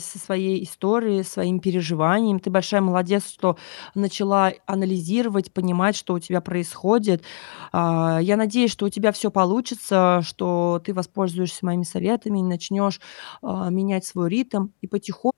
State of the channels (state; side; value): silent; right; digital silence